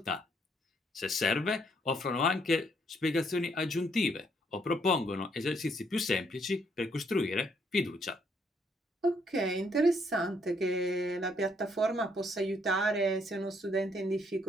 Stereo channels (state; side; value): normal; both; correlation 0.70